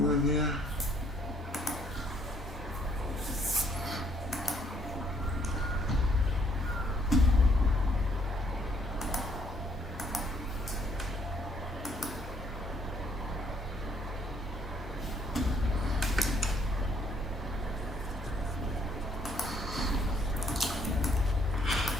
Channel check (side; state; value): both; normal; correlation 0.66